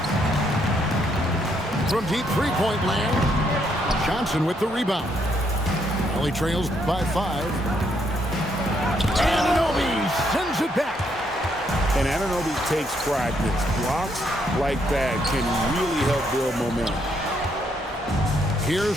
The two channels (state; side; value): normal; both; correlation 0.73